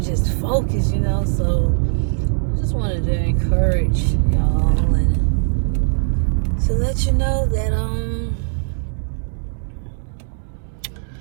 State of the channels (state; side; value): silent; left; digital silence